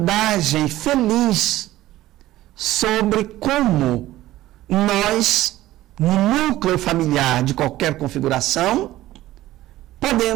feliz sobre como nós, no núcleo familiar de qualquer configuração,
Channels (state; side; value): quieter; left; 15.6 dB